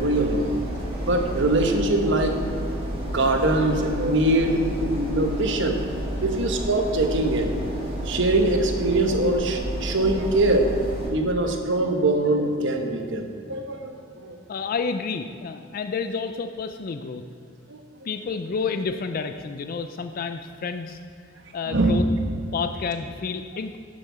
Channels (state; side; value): normal; both; correlation 0.22